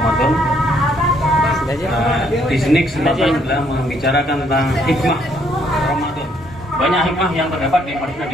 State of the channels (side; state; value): both; normal; correlation 0.69